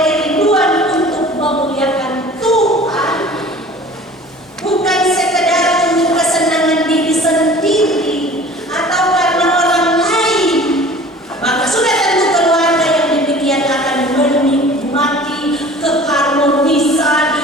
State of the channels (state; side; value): normal; both; correlation 0.45